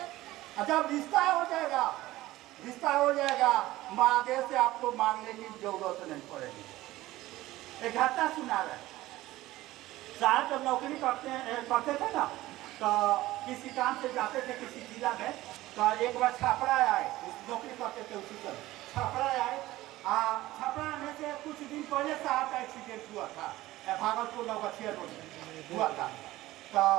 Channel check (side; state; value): left; quieter; 16.9 dB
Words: जब रिश्ता हो जाएगा, रिश्ता हो जाएगा, महादेव से आपको मांगने की जरूरत नहीं पड़ेगी। एक घटना सुना रहे, साहब जब नौकरी करते थे ना, तो किसी काम से जाते थे किसी जिला में, तो एक बार छापड़ा आए, नौकरी करते थे उसी समय छापड़ा आए। छापड़ा आने से कुछ दिन पहले साहब का एक्सीडेंट हुआ था, भागलपुर नौगछिया रोड में हुआ था। तो